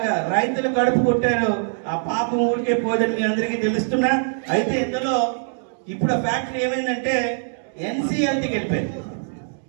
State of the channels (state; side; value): silent; left; digital silence